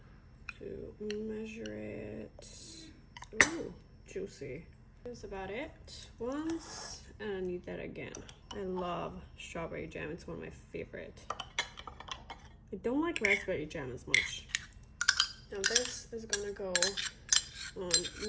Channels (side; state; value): both; identical; correlation 1.00